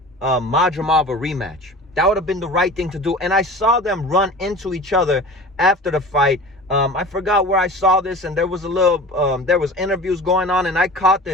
Madrimov a rematch. That would have been the right thing to do. And I saw them run into each other after the fight. I forgot where I saw this, and there was there was interviews going on, and I caught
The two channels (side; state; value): both; normal; correlation 0.37